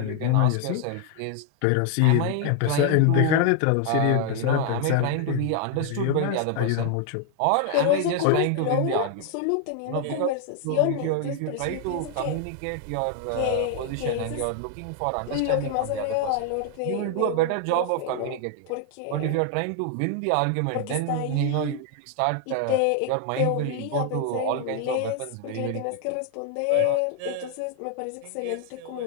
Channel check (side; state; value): both; different; correlation 0.00